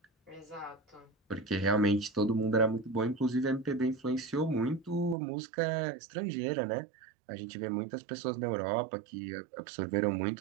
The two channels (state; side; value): drops out; left; at 5.2 s